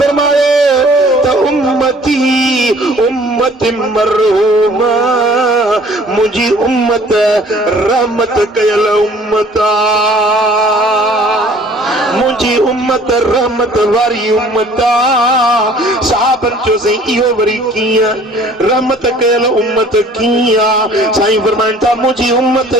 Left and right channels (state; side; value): normal; both; correlation 0.53